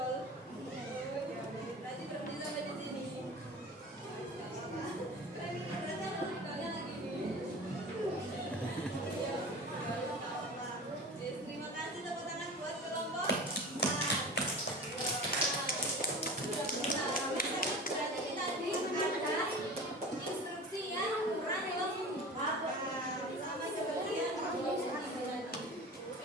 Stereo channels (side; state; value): both; normal; correlation 0.35